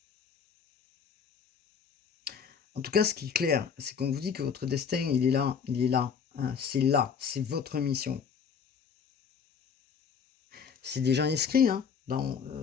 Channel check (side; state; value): right; quieter; 6.7 dB